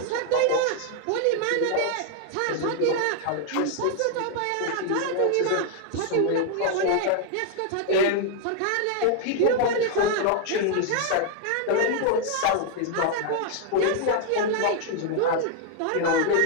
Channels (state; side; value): different; both; correlation 0.00